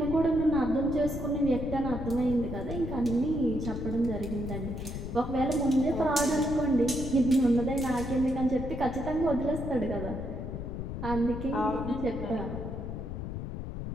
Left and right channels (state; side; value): noise; left; rumble, 6 dB below the sound